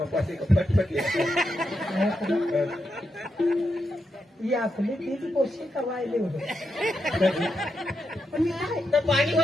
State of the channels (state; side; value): normal; both; correlation 0.84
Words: फटफट ही आपली तीच पोषी कवायले होते पण मी काय तर पाणी